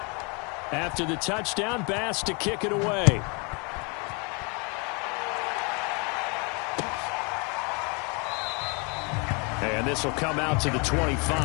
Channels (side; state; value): right; quieter; 32.4 dB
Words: After the touchdown, Bass to kick it away. And this will come out to the